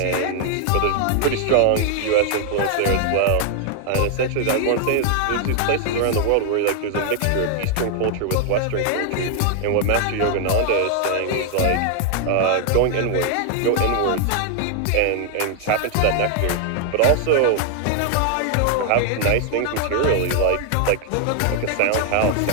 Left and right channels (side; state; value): both; different; correlation 0.00